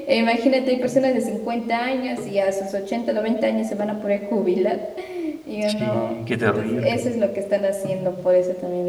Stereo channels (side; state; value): both; identical; correlation 1.00